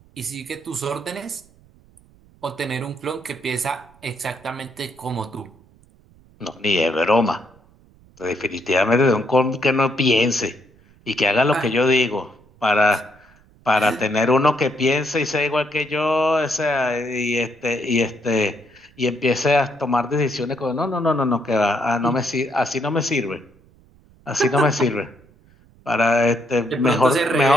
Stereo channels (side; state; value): right; noise; rumble, 29 dB below the sound